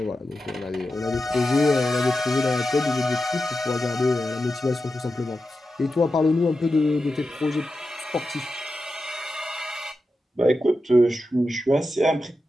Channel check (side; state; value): both; normal; correlation 0.90